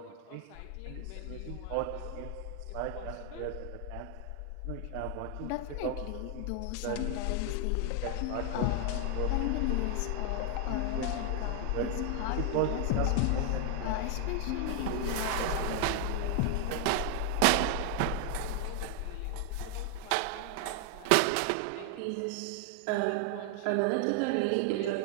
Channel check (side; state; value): both; different; correlation 0.00